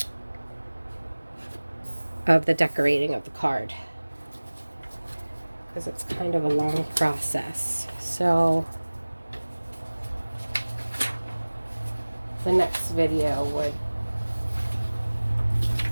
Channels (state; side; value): inverted; both; correlation -1.00